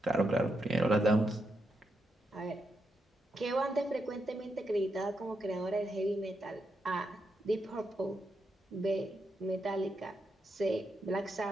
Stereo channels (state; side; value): normal; both; correlation 0.83